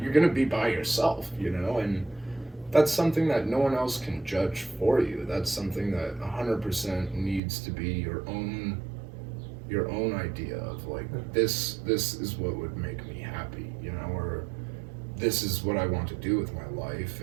going to be by yourself, you know, and that's something that no one else can judge for you. That's something that 100% needs to be your own idea of like, this is what would make me happy, you know, or this is what I want to do with my life,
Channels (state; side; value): drops out; left; at 7.4 s